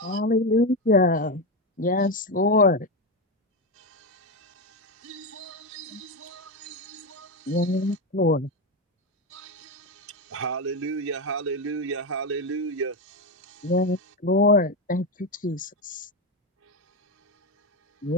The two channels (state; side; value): normal; both; correlation 0.11